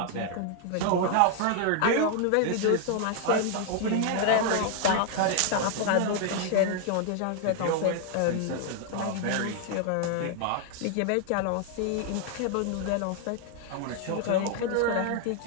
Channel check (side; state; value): both; different; correlation 0.00